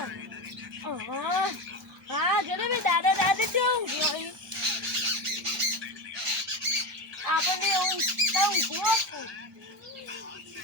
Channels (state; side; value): normal; both; correlation 0.19